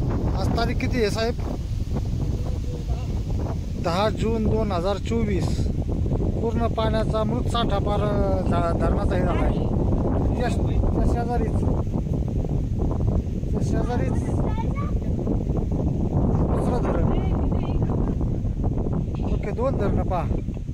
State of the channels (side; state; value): both; identical; correlation 1.00